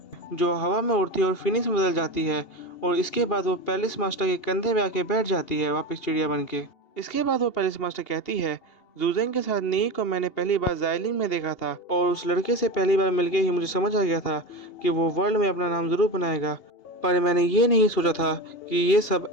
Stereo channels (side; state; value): right; late; 2.8 ms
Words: जो हवा में उड़ती है और फिनिश में बदल जाती है, और इसके बाद वो पैलेस मास्टर के कंधे पे आके बैठ जाती है वापस चिड़िया बन के। इसके बाद वो पैलेस मास्टर कहती है, ज़ुज़ेंग के साथ नी को मैंने पहली बार ज़ाइलिंग में देखा था और उस लड़के से पहली बार मिलके ही मुझे समझ आ गया था कि वो वर्ल्ड में अपना नाम ज़रूर बनाएगा, पर मैंने ये नहीं सोचा था कि ये सब